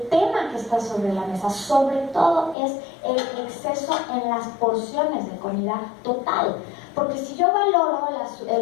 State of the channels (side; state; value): right; drops out; at 2.6 s